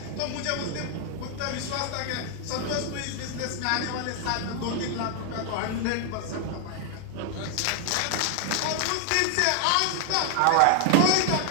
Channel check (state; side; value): different; both; correlation 0.00